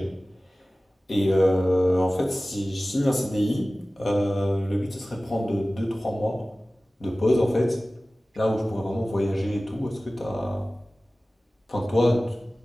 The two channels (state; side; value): normal; both; correlation 0.97